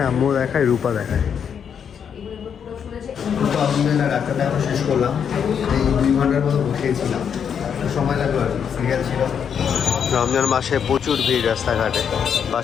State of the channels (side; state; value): right; quieter; 7.6 dB